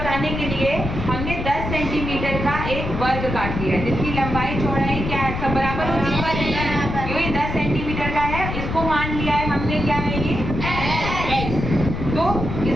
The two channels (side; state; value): left; noise; rumble, 4 dB below the sound